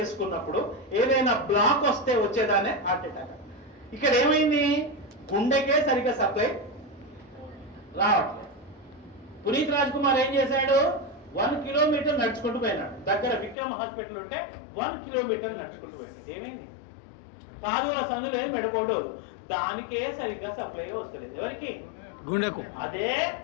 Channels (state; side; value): drops out; right; at 13.6 s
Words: ఏదైనా బ్లాక్ వస్తే వచ్చేదానే హార్ట్ అటాక్. ఇక్కడ ఏమైంది? గుండెకే సరిగ్గా సప్లై రావట్లేదు. పునీత్ రాజ్ కుమార్ ఏం చేశాడు? 1 కిలోమీటర్ నడుచుకుంటూ పోయినాడు. దగ్గర విక్రమ్ హాస్పిటల్ ఉంటే 1 కిలోమీటర్ నడుచుకుంటూ పోయాడు. ఏమైంది? కాదుల సందు లేదు, మెడకోడు, దానికే సరిగ్గా సప్లై వస్తలేదు. ఎవరికి? గుండెకు. అదే